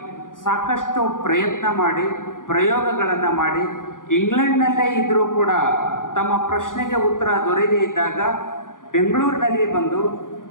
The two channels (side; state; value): right; late; 0.89 ms